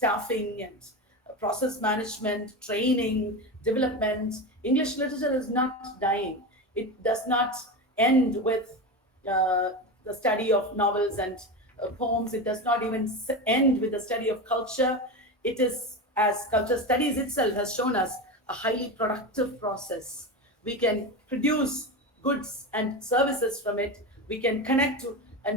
and process management, training, development. English literature is not dying. It does not end with the study of novels and poems. It does not even end with the study of culture. It is, as culture studies itself has shown us, a highly productive process. We can produce goods and services from it. We can connect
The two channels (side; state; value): both; normal; correlation 0.21